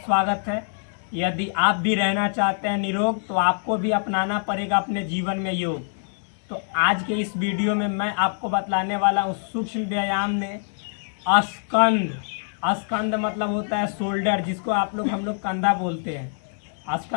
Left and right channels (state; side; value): silent; right; digital silence